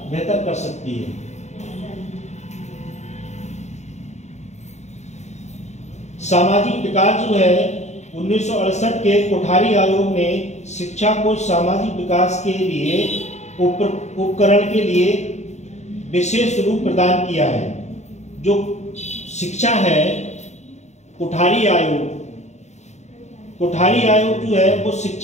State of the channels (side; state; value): right; late; 0.33 ms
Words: बेहतर कर सकती है। सामाजिक विकास जो है 1968 के कोठारी आयोग ने शिक्षा को सामाजिक विकास के लिए उपकरण के लिए विशेष रूप प्रदान किया है। जो शिक्षा है कोठारी आयोग जो है वो